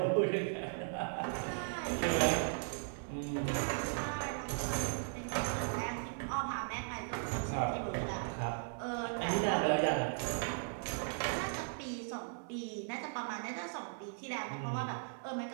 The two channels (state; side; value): silent; left; 53 dB below the other